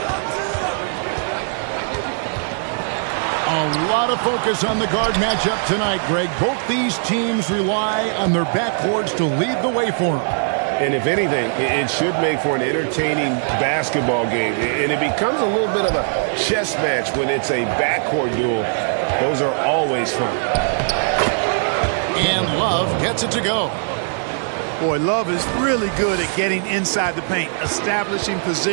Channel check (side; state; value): left; silent; 66 dB below the other